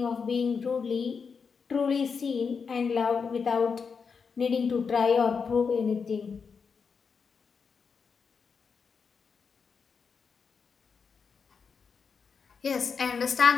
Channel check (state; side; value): quieter; right; 5.7 dB